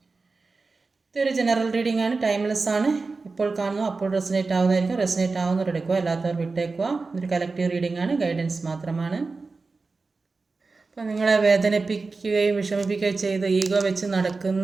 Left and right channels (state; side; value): quieter; left; 4.0 dB